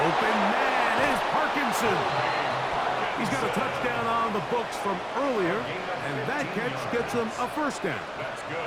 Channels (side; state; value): both; identical; correlation 1.00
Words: Open man is Parkinson. He's got a touchdown on the books from earlier, and that catch gets him a 1st down.